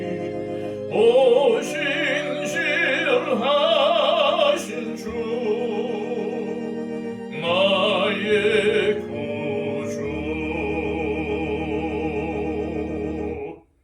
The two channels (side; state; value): both; identical; correlation 1.00